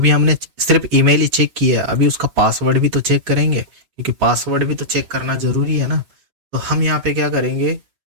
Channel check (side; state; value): left; late; 7.2 ms